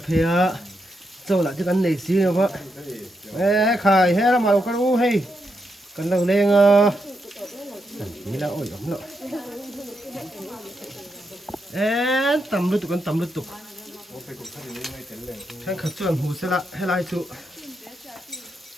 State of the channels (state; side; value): normal; both; correlation 0.83